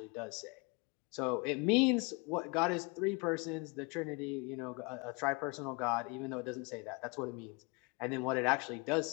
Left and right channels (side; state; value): right; quieter; 29.7 dB